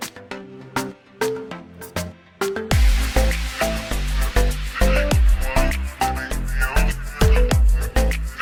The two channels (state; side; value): identical; both; correlation 1.00